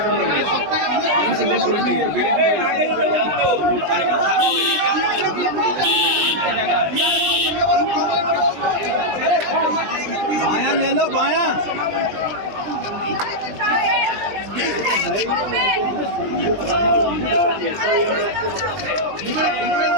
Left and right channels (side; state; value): left; late; 20 ms